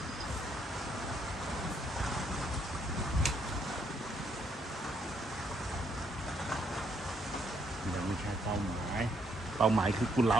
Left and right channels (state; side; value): normal; both; correlation 0.72